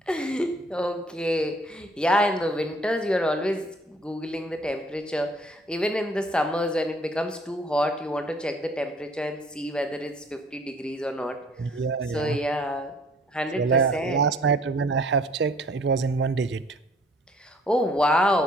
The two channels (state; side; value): normal; both; correlation 0.57